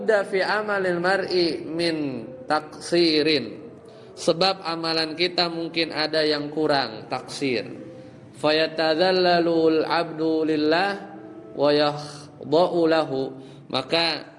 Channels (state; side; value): identical; both; correlation 1.00